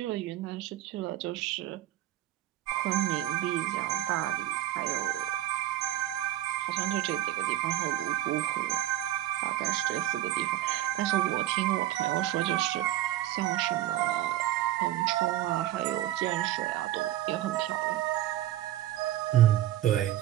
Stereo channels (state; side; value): quieter; left; 14.1 dB